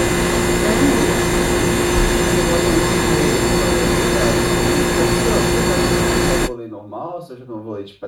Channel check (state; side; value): identical; both; correlation 1.00